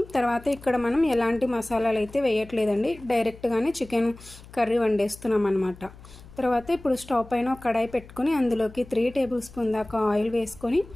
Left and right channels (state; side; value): noise; left; hum, 20 dB below the sound